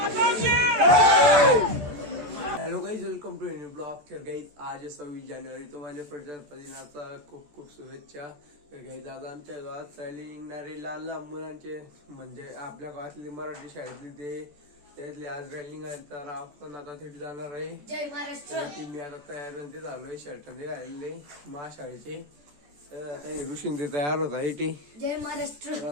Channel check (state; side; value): late; left; 14 ms